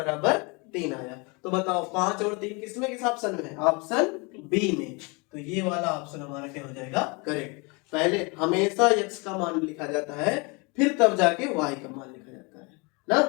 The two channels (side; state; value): right; quieter; 29.6 dB